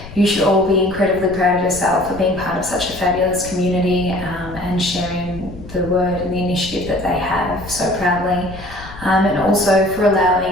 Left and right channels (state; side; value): noise; left; rumble, 15 dB below the sound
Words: you should all be incredibly proud of yourself for being part of such a fabulous community and sharing the word and the initiative that they have so proudly, and also for